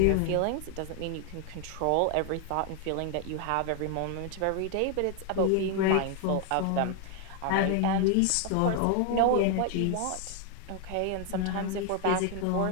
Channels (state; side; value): different; both; correlation 0.00